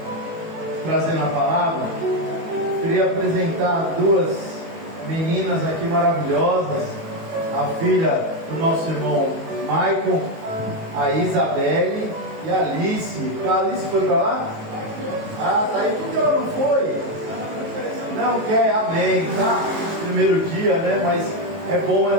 trazendo a palavra, queria apresentar duas meninas aqui maravilhosas, a filha do nosso irmão Michael, a Isabelle e a Alice. A Alice foi para lá? Ah, tá aí. Por que ela não foi? Não quer, amém, tá? Primeiro dia, né? Mas é bom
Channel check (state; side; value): late; left; 19 ms